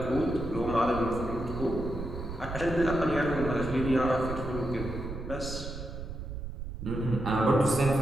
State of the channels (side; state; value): right; noise; rumble, 8 dB below the sound